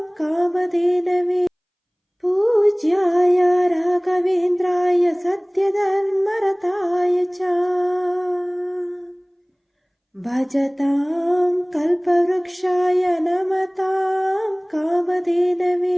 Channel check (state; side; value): identical; both; correlation 1.00